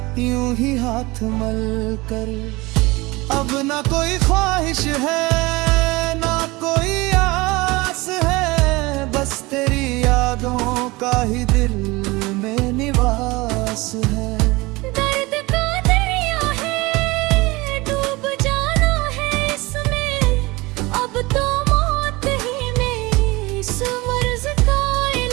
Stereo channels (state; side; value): quieter; left; 22.5 dB